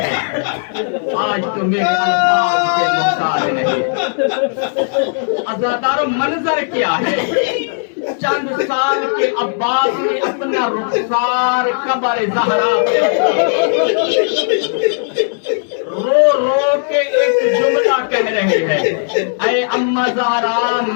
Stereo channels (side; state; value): right; silent; digital silence